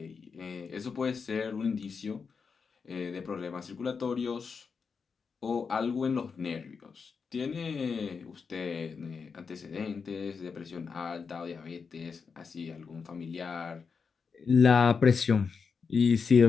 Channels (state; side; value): quieter; right; 5.5 dB